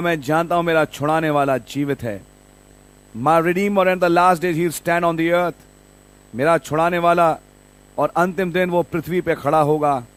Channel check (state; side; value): identical; both; correlation 1.00